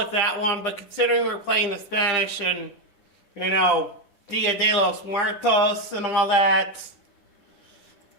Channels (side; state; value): right; late; 9.9 ms